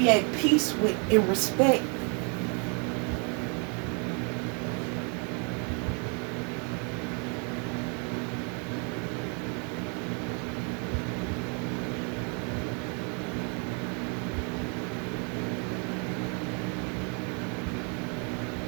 at peace with and respect.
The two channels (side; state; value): left; quieter; 36.3 dB